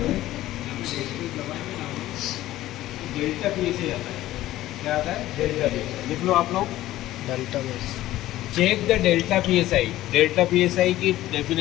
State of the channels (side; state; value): right; quieter; 15.1 dB